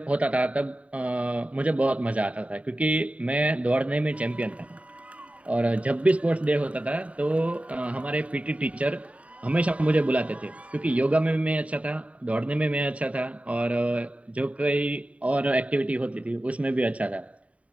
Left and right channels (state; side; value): late; left; 0.066 ms